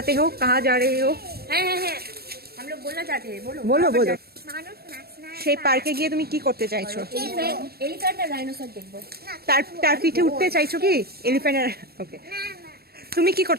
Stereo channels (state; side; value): late; left; 0.46 ms